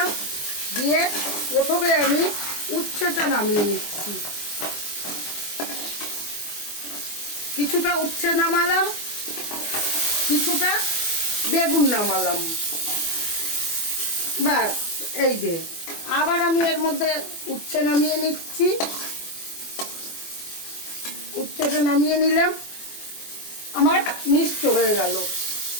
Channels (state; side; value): late; right; 24 ms